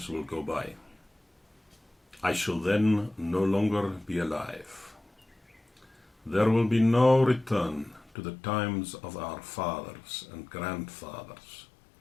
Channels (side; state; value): right; drops out; at 8.1 s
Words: will go by. I shall then no longer be alive. There will be no return to the times of our fathers and grandfathers.